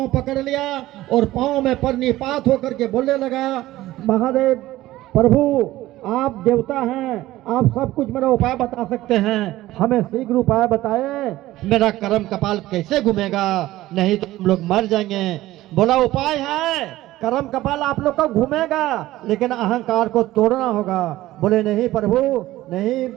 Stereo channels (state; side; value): quieter; left; 16.2 dB